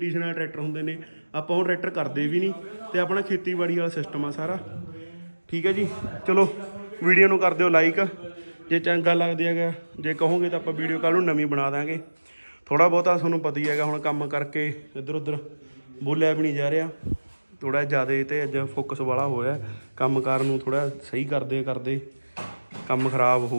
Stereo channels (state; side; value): inverted; both; correlation -1.00